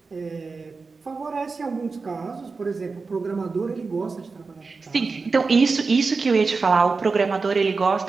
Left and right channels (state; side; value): quieter; left; 4.3 dB